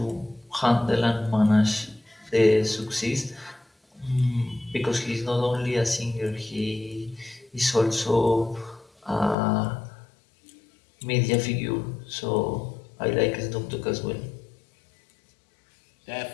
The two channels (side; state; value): right; drops out; at 9.3 s